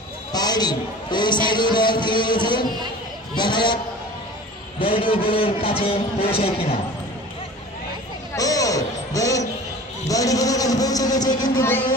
পায়নি। ওই সাইডে বল ফিরে গেছে। দেখা যাক বলটি গোলের কাছে পৌঁছায় কিনা। ও বলটি গোলের কাছে পৌঁছে গেছে কিন্তু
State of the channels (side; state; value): both; normal; correlation 0.41